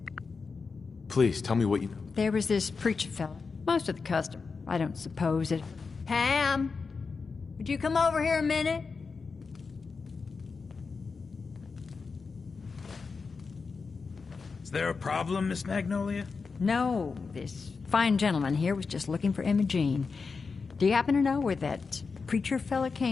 Please, tell me what you know. There was this preacher fella. Most of the custom. I don't suppose it... Pam, would you come over here a minute? Is there a problem, Miss Magnolia? No, this fine gentleman here was just looking for Imogene. Do you happen to know where that preacher fella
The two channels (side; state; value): right; quieter; 4.8 dB